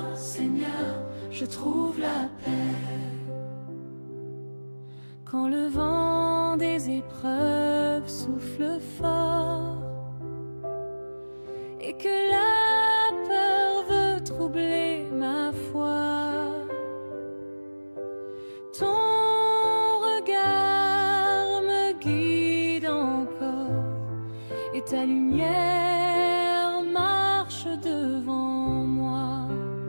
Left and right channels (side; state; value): both; inverted; correlation -1.00